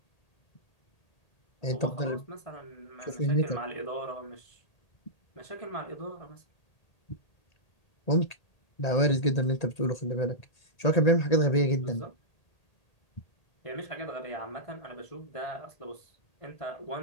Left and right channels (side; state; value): right; late; 1.8 ms